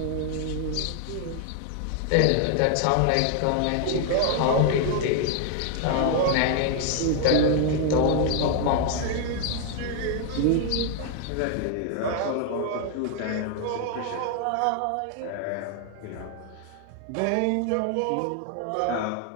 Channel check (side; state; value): both; different; correlation 0.00